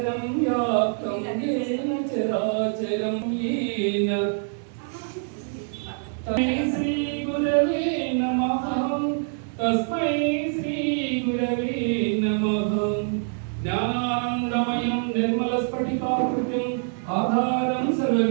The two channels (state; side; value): silent; left; 60 dB below the other